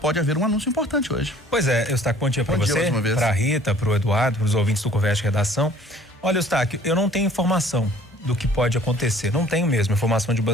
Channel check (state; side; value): normal; both; correlation 0.54